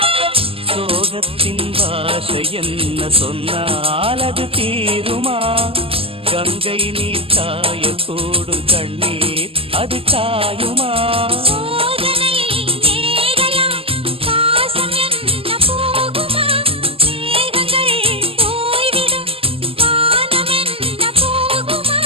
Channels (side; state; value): left; late; 0.27 ms